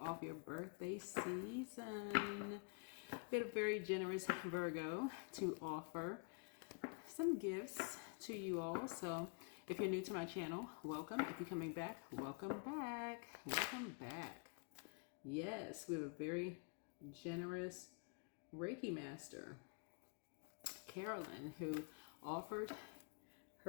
your birthday season. We had a very generous Virgo to offer some gifts to you all. So if you're new to my channel, welcome. If you're coming back, welcome back. Welcome back. Yes, we have a very generous Reiki master, Carolyn, who offered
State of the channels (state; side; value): quieter; right; 36.9 dB